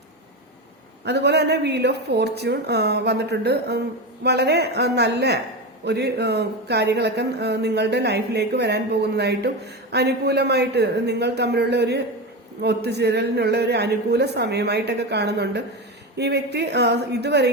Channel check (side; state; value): both; normal; correlation 0.19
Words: അതുപോലെ തന്നെ വീൽ ഓഫ് ഫോർച്യൂൺ വന്നിട്ടുണ്ട്. വളരെ നല്ല ഒരു കാര്യങ്ങളൊക്കെ നിങ്ങളുടെ ലൈഫിലേക്ക് വരാൻ പോകുന്നതായിട്ടും, അനുകൂലമായിട്ട് നിങ്ങൾ തമ്മിലുള്ള ഒരു ഒത്തുചേരലിനുള്ള ഒരു അനുകൂല സമയമായിട്ടൊക്കെ കാണുന്നുണ്ട്. ഈ വ്യക്തി